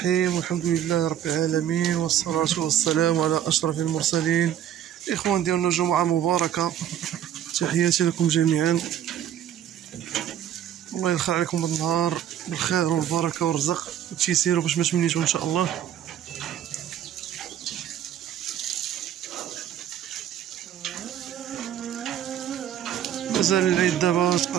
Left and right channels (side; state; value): left; quieter; 10.5 dB